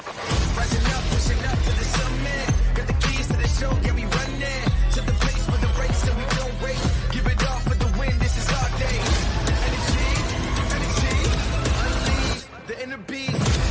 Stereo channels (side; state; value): both; identical; correlation 1.00